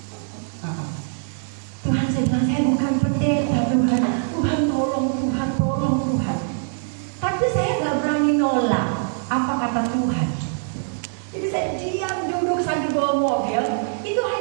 Tuhan, saya bilang, saya bukan pendeta, Tuhan. Tuhan tolong, Tuhan tolong, Tuhan. Tapi saya nggak berani nolak apa kata Tuhan. Jadi saya diam duduk sambil bawa mobil. Itu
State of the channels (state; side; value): silent; left; digital silence